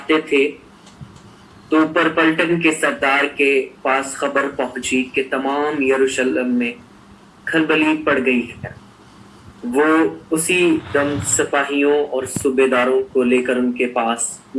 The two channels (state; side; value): identical; both; correlation 1.00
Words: थे तो ऊपर पलटन के सरदार के पास खबर पहुंची कि तमाम यरूशलेम में खलबली पड़ गई है। वो उसी दम सिपाहियों और सूबेदारों को लेकर उनके पास